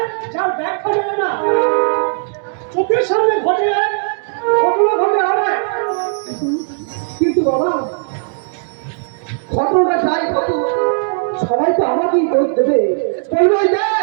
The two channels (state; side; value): silent; left; digital silence